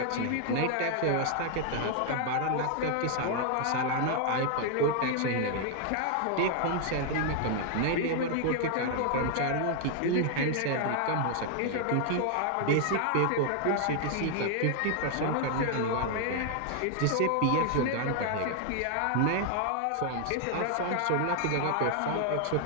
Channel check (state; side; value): different; both; correlation 0.00